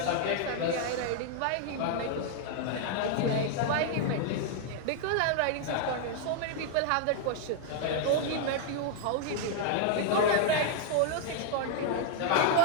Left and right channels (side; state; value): both; different; correlation -0.01